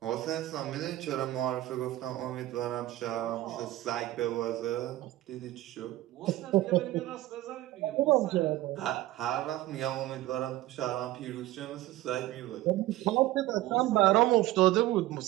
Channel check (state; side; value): quieter; left; 16.0 dB